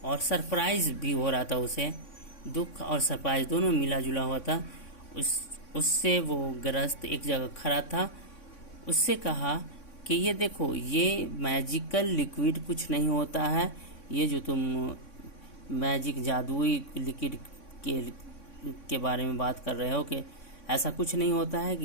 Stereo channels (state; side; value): late; right; 3.6 ms